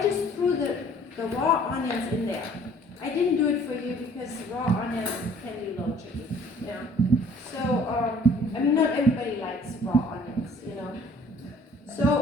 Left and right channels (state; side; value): normal; both; correlation 0.55